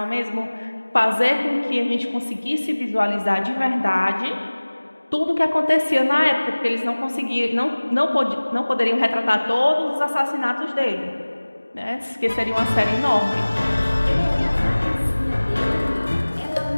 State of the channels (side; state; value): both; inverted; correlation -1.00